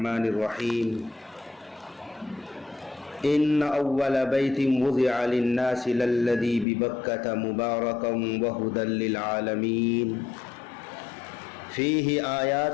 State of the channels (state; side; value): drops out; right; at 6.7 s